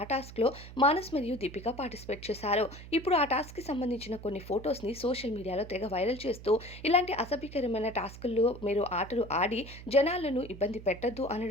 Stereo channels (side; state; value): right; noise; hum, 15 dB below the sound